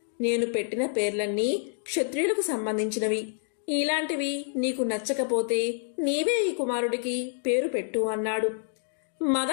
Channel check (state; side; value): silent; right; digital silence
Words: నేను పెట్టిన పేర్లన్నీ క్షత్రియులకు సంబంధించినవి. ఇలాంటివి నీకు నచ్చకపోతే నీవే ఈ కుమారుడికి పేరు పెట్టు అన్నాడు.